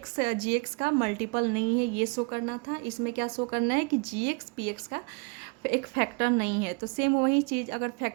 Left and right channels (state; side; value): quieter; left; 30.7 dB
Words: जी एक्स का मल्टीपल नहीं है ये शो करना था, इसमें क्या शो करना है कि जी एक्स पी एक्स का एक फैक्टर नहीं है। तो सेम वही चीज़, अगर